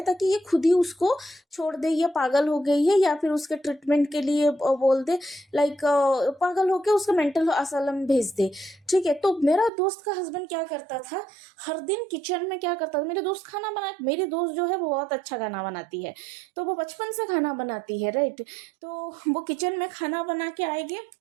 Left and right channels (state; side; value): drops out; left; at 9.7 s